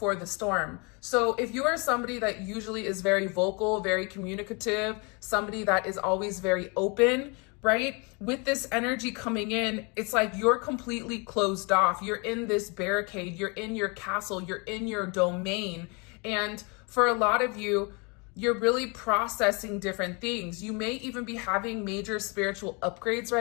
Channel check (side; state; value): right; quieter; 31.4 dB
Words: the storm. So if you are somebody that usually is very vocal, very communicative, somebody that is always very open, right? With this energy coming in, it's like you're completely closed off. You're in this barricade, you're in your castle, you're in your domain. And for a lot of you, you're really processing different things. You may even be having major spiritual upgrades